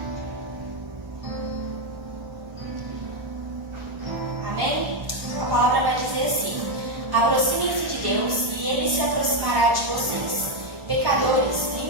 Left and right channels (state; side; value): late; left; 1.3 ms